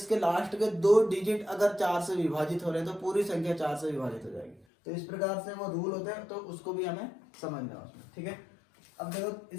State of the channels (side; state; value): right; drops out; at 4.7 s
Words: लास्ट के 2 डिजिट अगर 4 से विभाजित हो रहे हैं तो पूरी संख्या 4 से विभाजित हो जाएगी। तो इस प्रकार से वो रूल होते हैं, तो उसको भी हमें समझना है उसमें। ठीक है, अब देखो,